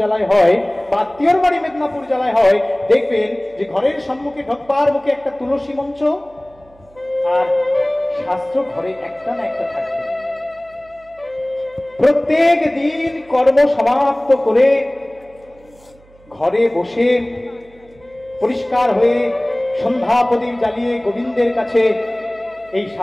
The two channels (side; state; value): right; noise; hum, 28 dB below the sound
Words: জেলায় হয়, বা আত্মীয়র বাড়ি মেদিনীপুর জেলায় হয়, দেখবেন যে ঘরের সম্মুখে ঢোকবার মুখে একটা তুলসী মঞ্চ, আর শাস্ত্র ঘরে একটা না একটা থাকবে। প্রত্যেক দিন কর্ম সমাপ্ত করে ঘরে বসে পরিষ্কার হয়ে সন্ধ্যা প্রদীপ জ্বালিয়ে গোবিন্দের কাছে এই